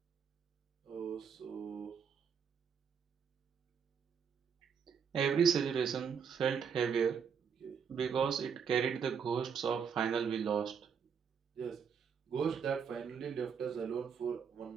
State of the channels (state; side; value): quieter; left; 6.8 dB